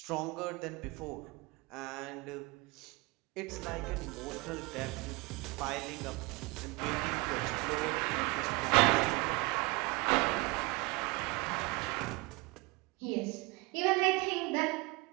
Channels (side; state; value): left; quieter; 25.2 dB